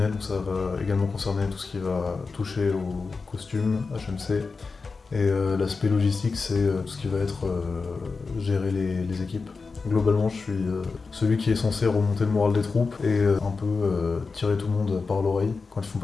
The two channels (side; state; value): right; quieter; 4.4 dB